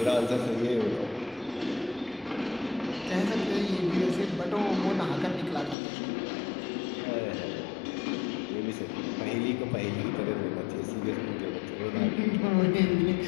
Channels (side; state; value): right; drops out; at 5.8 s